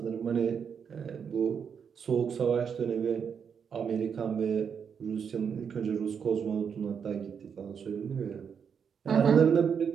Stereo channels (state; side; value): quieter; left; 7.0 dB